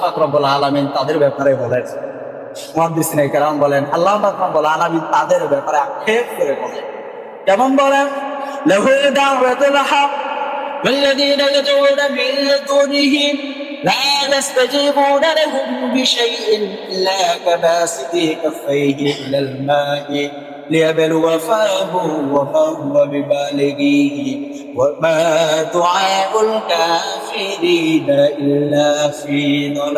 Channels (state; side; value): identical; both; correlation 1.00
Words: পাক রব্বুল আলামিন তাদের ব্যাপারে বলেন, মুহাদ্দিসিনে কেরাম বলেন, আল্লাহ পাক রব্বুল আলামিন তাদের ব্যাপারে আক্ষেপ করে বলেন, কেমন বলেন? লাহু দাওয়াতুল হক ওয়াল্লাযীনা ইয়াদউনা মিন দুনিহি লা يستجيبون لهم بشيء إلا كباسط كفيه إلى الماء ليبلو فاه وما هو ببالغه وما دعاء الكافرين إلا في